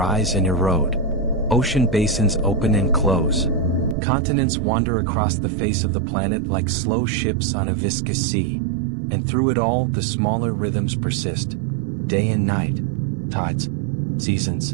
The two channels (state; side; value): drops out; left; at 4.0 s